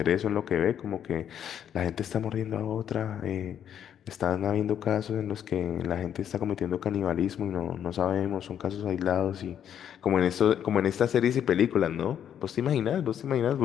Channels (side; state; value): right; quieter; 9.4 dB